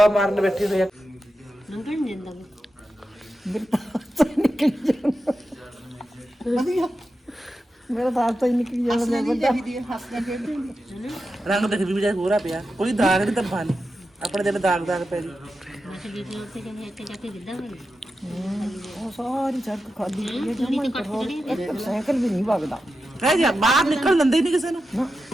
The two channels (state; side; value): normal; both; correlation 0.90